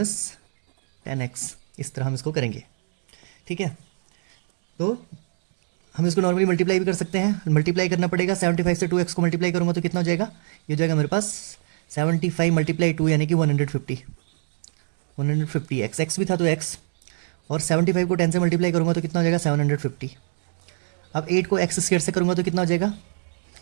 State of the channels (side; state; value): left; silent; 63 dB below the other